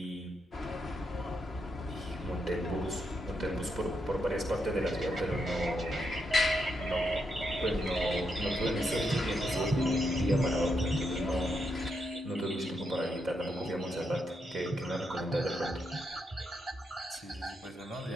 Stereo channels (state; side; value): normal; both; correlation 0.81